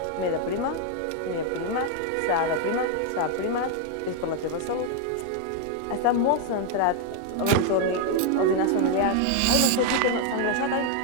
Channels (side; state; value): both; different; correlation 0.01